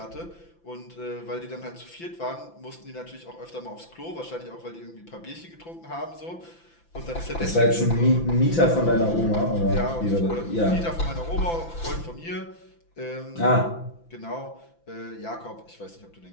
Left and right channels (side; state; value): right; late; 5.9 ms